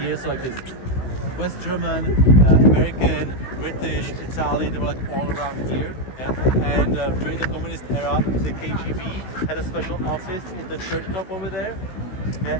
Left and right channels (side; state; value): right; late; 16 ms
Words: so like this West German, American, British, Italian, they were like all around here. And during the communist era, the KGB had a special office in the church top over there,